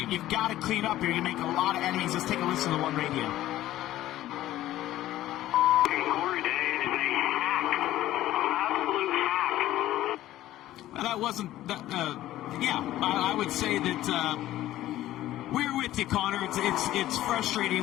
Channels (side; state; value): right; quieter; 14.4 dB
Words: You've got to clean up here. You're going to make a lot of enemies. Let's take a listen to the one radio. Corey Day is a hack. Absolute hack. Well, that wasn't... I would say that... we're with you, Connor. It's